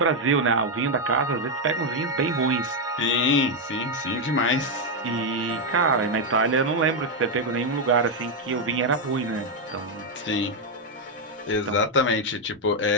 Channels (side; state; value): both; normal; correlation 0.02